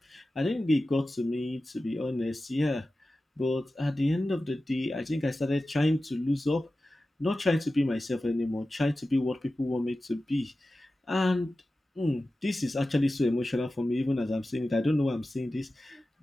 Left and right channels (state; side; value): normal; both; correlation 0.94